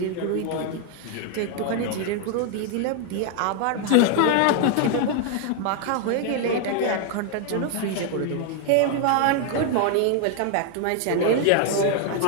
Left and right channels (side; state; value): both; different; correlation 0.00